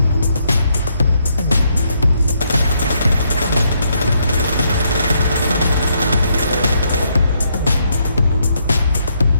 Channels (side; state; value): both; inverted; correlation -0.75